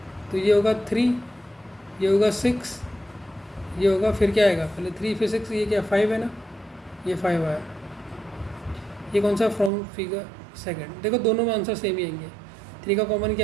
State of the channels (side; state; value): left; drops out; at 9.7 s